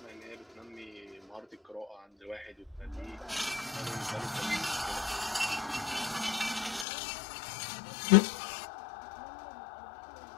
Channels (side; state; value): right; drops out; at 6.9 s